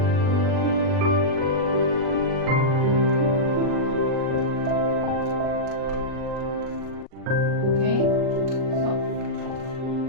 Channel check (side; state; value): left; late; 39 ms